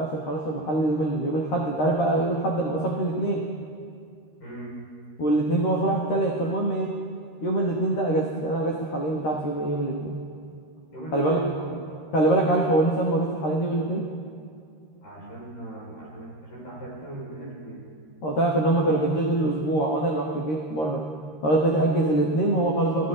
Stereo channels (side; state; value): right; late; 13 ms